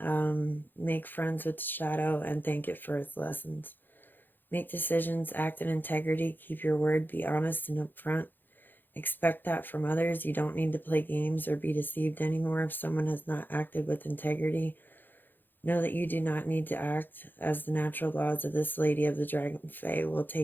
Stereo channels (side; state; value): right; late; 0.092 ms